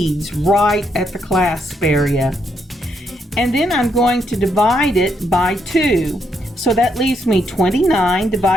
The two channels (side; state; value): both; normal; correlation 0.77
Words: right at the clasp area. And then I'm going to divide it by 2. So that leaves me 29